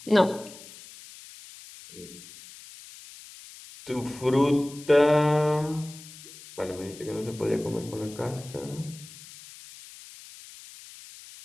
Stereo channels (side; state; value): left; noise; hiss, 18 dB below the sound